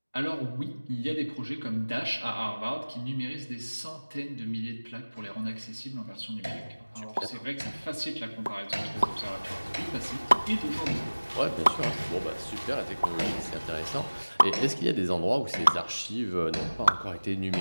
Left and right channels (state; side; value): inverted; both; correlation -1.00